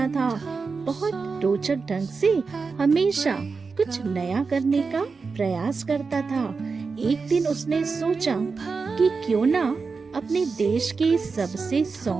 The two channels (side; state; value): left; quieter; 4.7 dB